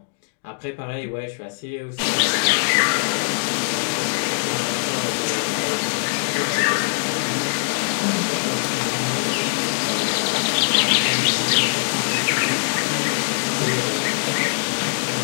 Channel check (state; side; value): silent; right; digital silence